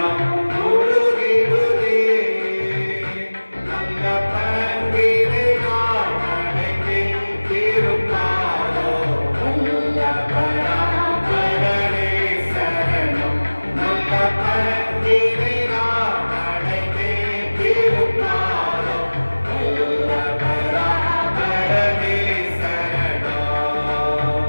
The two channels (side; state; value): both; inverted; correlation -1.00